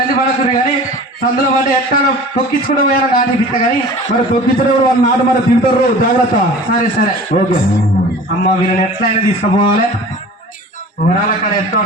పడకురు కానీ సందులో పడి ఎట్లా తొక్కించుకుంటూ పోయారో నాటి పిట్ట కానీ మరి తొక్కించడం వాళ్ళు నాటు మరి తింటారు జాగ్రత్త సరే ఓకే అమ్మ వీళ్ళని ఎట్లయినా తీసుకుపోవాలి ఊరాల కాడ ఎట్లా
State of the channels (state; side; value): normal; both; correlation 0.41